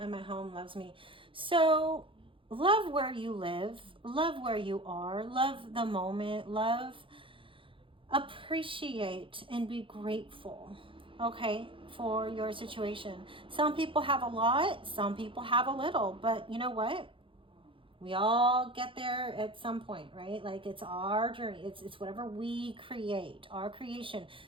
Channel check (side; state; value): left; late; 0.25 ms